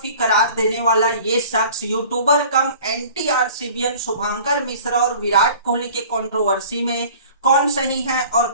करार देने वाला ये शख्स यूट्यूबर कम एंटी आरसीबीएन शुभंकर मिश्रा और विराट कोहली के कंट्रोवर्सी में कौन सही है और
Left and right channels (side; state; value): both; inverted; correlation -0.46